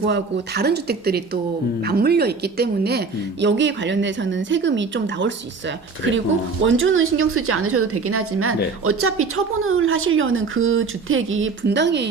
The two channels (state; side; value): quieter; left; 4.6 dB